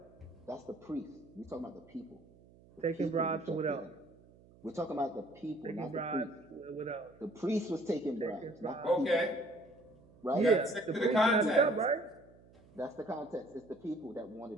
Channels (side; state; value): right; noise; hum, 25 dB below the sound